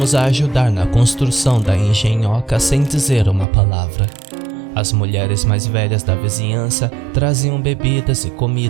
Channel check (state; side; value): drops out; left; at 3.5 s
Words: a ajudar na construção da engenhoca sem dizer uma palavra. As mulheres mais velhas da vizinhança traziam bebidas e